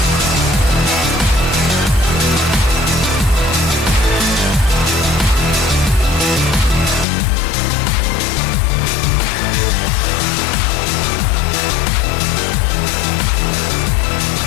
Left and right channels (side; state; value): right; drops out; at 7.1 s